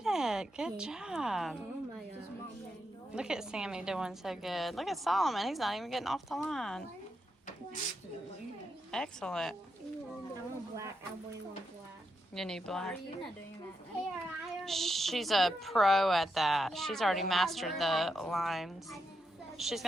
it. Good job. Oh my god. Look at Sammy doing so good. Look at Solomon. He's not even getting off the line. Excellent. I want black. I want black. You need black. You're not doing that. She's a pro at that. She's already mastered the lines. She's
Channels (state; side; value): normal; both; correlation 0.83